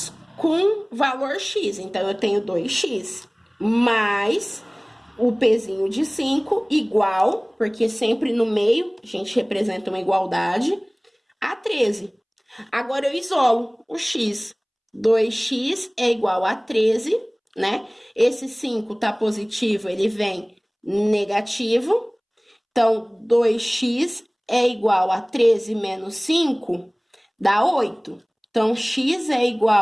com valor x, então eu tenho 2x mais o pezinho de 5 igual, porque sempre no meio a gente representa uma igualdade, a 13. Agora eu isolo o x. 2x é igual a 13, né? Esse 5 tá positivo, ele vem negativo. Então, 2x é igual a 13 menos 5, dá 8. Então, x é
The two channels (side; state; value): both; identical; correlation 1.00